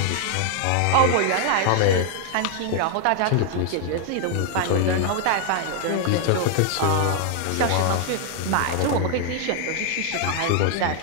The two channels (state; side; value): different; both; correlation 0.00